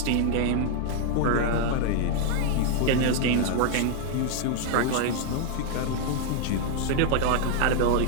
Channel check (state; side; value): different; both; correlation 0.00